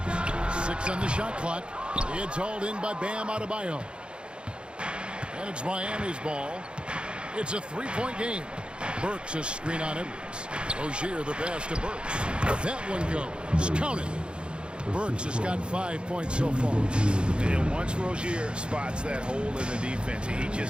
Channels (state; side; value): late; left; 0.054 ms